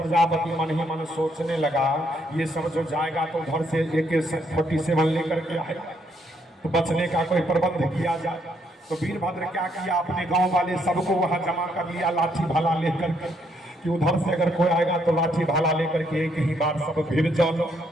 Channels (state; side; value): normal; both; correlation 0.72